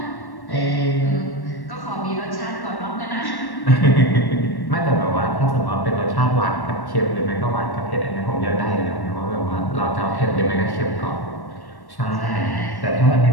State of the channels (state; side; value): late; right; 1.1 ms